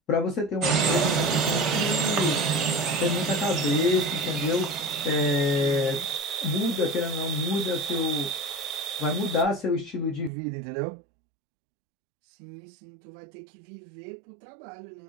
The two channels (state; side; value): drops out; left; at 10.3 s